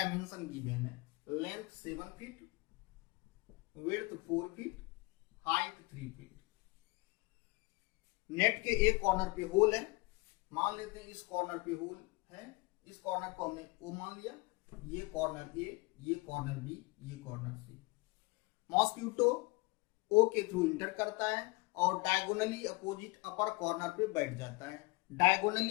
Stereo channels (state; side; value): quieter; right; 24.9 dB